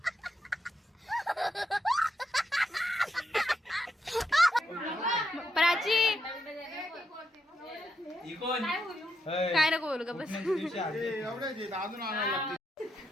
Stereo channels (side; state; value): both; normal; correlation 0.82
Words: प्राची काय नको बोलू का बस.